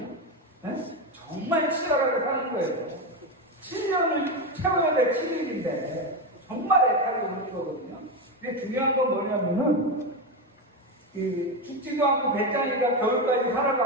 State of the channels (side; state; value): both; normal; correlation 0.13